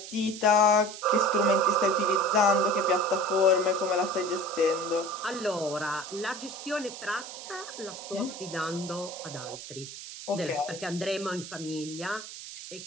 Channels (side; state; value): right; noise; hiss, 12 dB below the sound